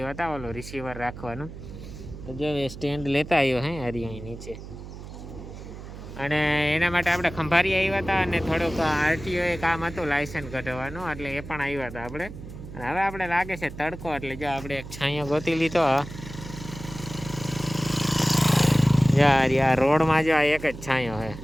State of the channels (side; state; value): right; noise; hum, 13 dB below the sound